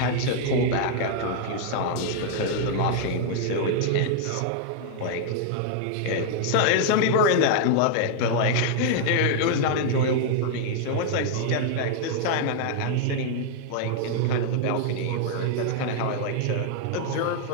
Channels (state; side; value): different; both; correlation -0.01